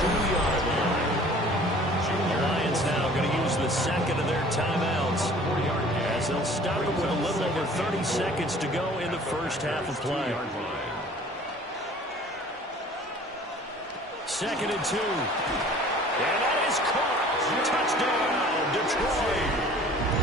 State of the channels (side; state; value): both; normal; correlation 0.49